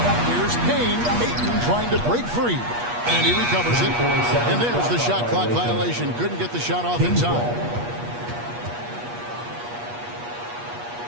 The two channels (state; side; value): late; left; 8.4 ms